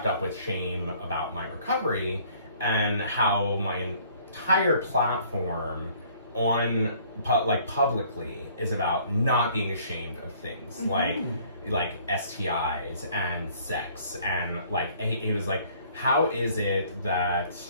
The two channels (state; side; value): inverted; both; correlation -0.57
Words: up with shame about my recovery and how my entire platform on publicly is about not being ashamed of things like STIs and sex, and like he was like, how is it that